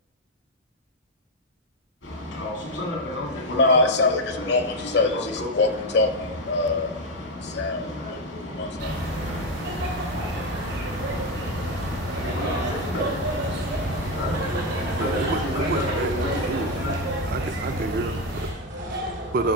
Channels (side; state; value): both; normal; correlation 0.08